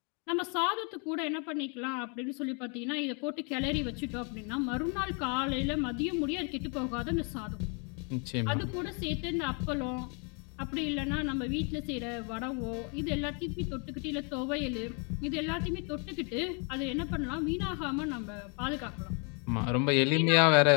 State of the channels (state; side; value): quieter; right; 36.4 dB